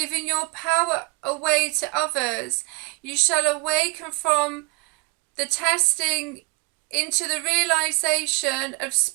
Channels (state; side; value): quieter; left; 27.6 dB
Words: your power away to others. You shall awaken from the testing into the realization of